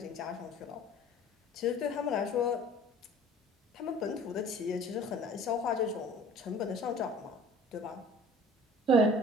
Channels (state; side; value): normal; both; correlation 0.47